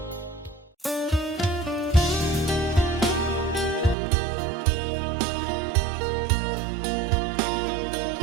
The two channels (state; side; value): drops out; left; at 4.0 s